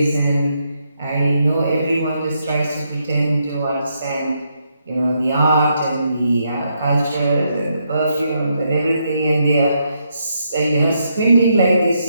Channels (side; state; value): both; inverted; correlation -0.78